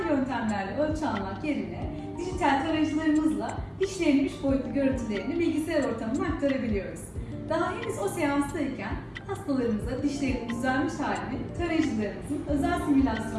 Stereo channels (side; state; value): both; identical; correlation 1.00